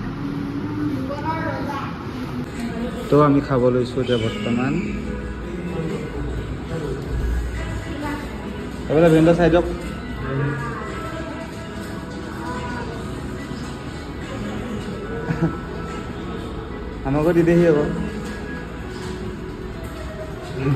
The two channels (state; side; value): identical; both; correlation 1.00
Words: তো আমি খাব লৈছো এতিয়া বৰ্তমান এবাৰ ভেন্ডা চাই দিয়ক আমাকো দি দেহি আকৌ